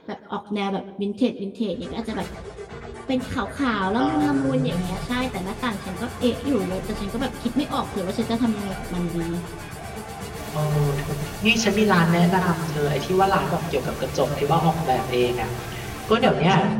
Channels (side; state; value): both; identical; correlation 1.00